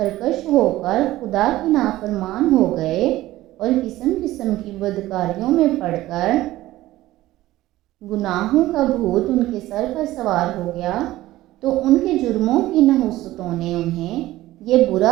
ہو کر خدا کے نافرمان ہو گئے اور قسم قسم کی بدکاریوں میں پڑ کر گناہوں کا بھوت ان کے سر پر سوار ہو گیا، تو ان کے جرموں کی نحوستوں نے انہیں یہ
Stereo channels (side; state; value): left; quieter; 16.2 dB